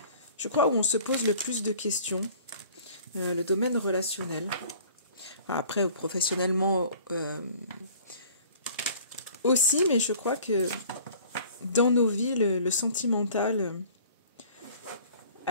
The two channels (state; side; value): inverted; both; correlation -0.49